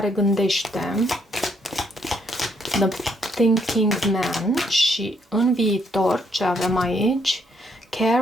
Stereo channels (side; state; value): both; normal; correlation 0.71